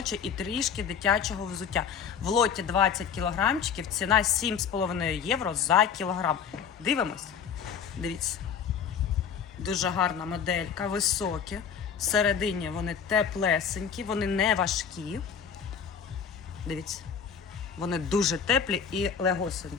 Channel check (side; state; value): right; quieter; 7.2 dB